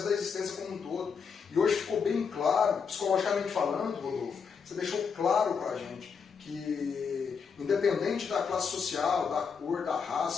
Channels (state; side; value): quieter; right; 6.0 dB